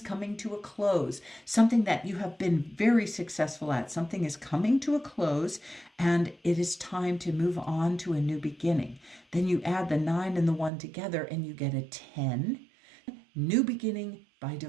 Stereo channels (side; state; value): left; drops out; at 10.7 s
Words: coming to a close, something that you have been very successful at. Something is coming to a close, and it is time to move on to a new beginning. Then you add the 9 and the 1 together, and you get a 10. New beginning by